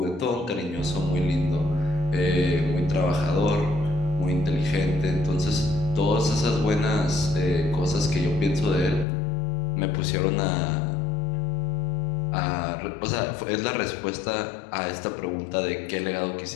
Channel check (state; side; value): drops out; right; at 9.1 s